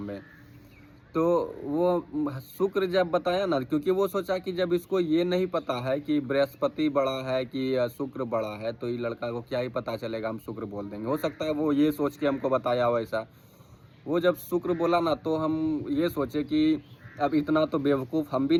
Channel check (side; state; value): both; identical; correlation 1.00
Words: में। तो वो शुक्र जब बताया ना, क्योंकि वो सोचा कि जब इसको ये नहीं पता है कि बृहस्पति बड़ा है कि शुक्र बड़ा है, तो ये लड़का को क्या ही पता चलेगा, हम शुक्र बोल देंगे। हो सकता है वो ये सोच के हमको बताया हो ऐसा। वो जब शुक्र बोला ना, तो हम ये सोचे कि अब इतना तो बेवकूफ़ हम भी